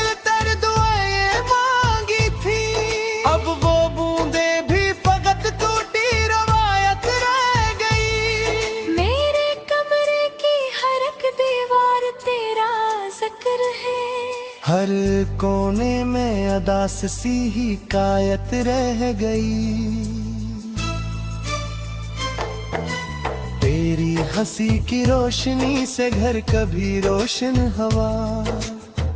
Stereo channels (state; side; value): identical; both; correlation 1.00